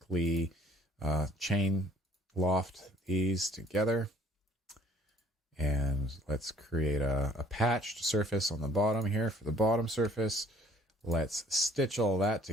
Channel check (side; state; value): both; normal; correlation 0.58